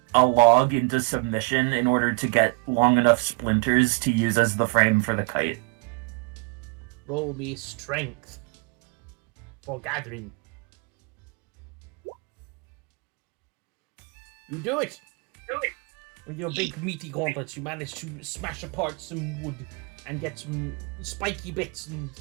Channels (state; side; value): quieter; left; 29.2 dB